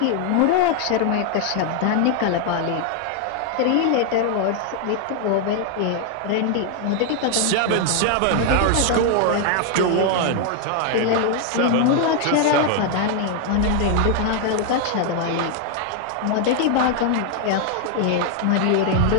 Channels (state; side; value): different; both; correlation 0.00